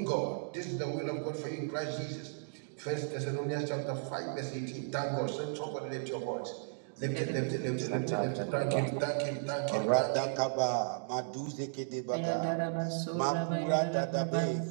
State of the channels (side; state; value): left; silent; digital silence